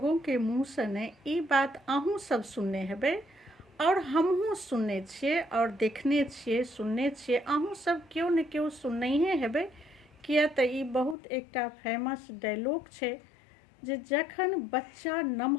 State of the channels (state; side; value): drops out; right; at 11.2 s